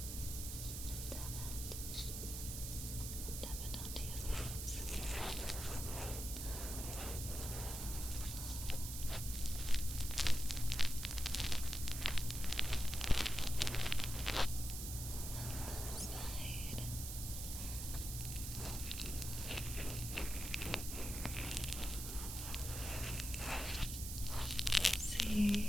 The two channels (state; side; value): noise; right; hiss, 6 dB below the sound